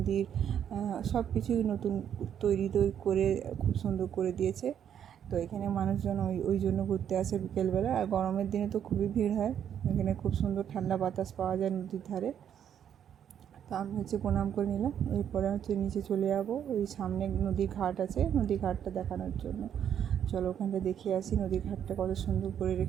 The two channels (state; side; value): quieter; left; 9.2 dB